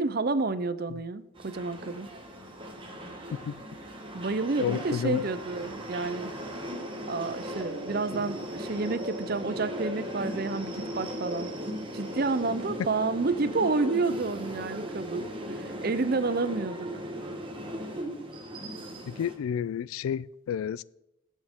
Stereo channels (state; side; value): normal; both; correlation 0.18